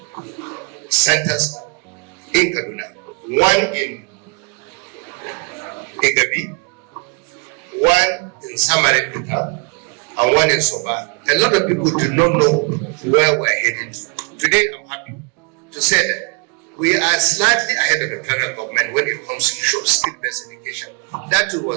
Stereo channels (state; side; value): quieter; left; 29.8 dB